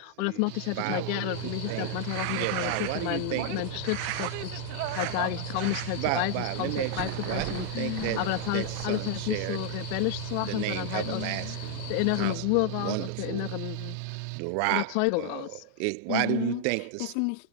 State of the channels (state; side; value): different; both; correlation 0.00